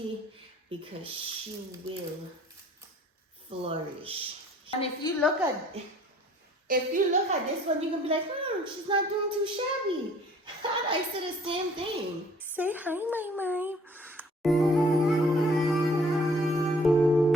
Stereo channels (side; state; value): both; normal; correlation 0.55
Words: because she will flourish. And if you look at this one, you can be like, she's not doing too shabby. And I said the same thing. Say hi, my.